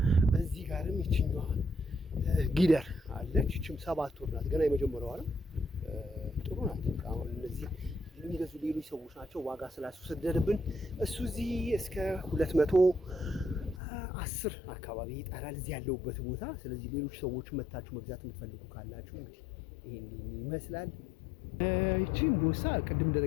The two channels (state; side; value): drops out; right; at 13.8 s